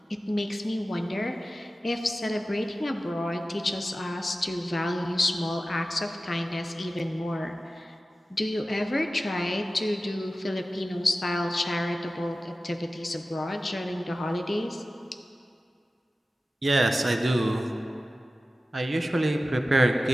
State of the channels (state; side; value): normal; both; correlation 0.95